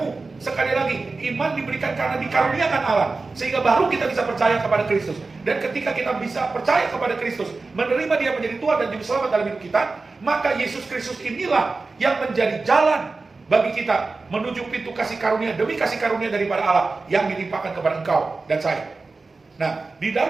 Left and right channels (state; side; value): quieter; left; 3.8 dB